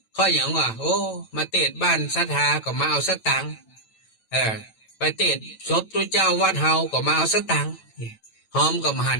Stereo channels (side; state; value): right; late; 9.0 ms